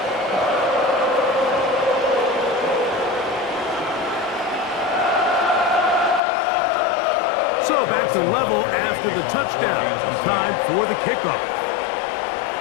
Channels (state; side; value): drops out; right; at 6.2 s